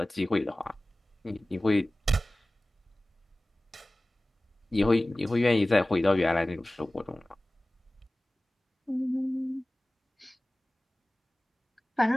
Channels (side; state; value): both; normal; correlation 0.98